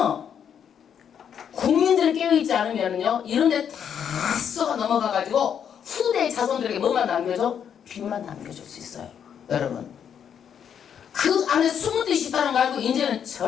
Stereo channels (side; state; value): right; quieter; 8.3 dB